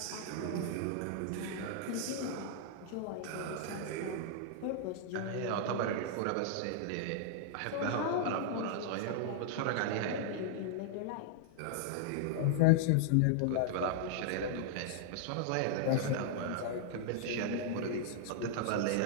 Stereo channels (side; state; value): both; different; correlation -0.01